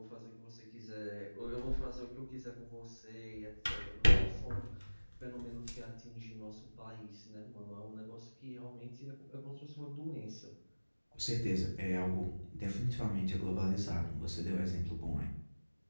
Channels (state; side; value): inverted; both; correlation -1.00